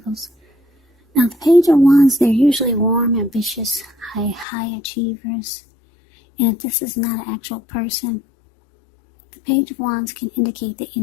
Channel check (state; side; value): drops out; right; at 4.5 s